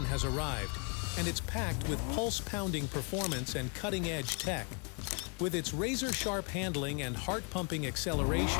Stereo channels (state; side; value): quieter; right; 36.4 dB